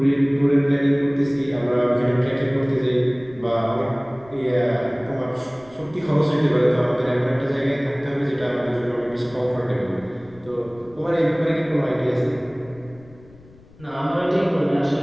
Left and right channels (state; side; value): noise; left; rumble, 24 dB below the sound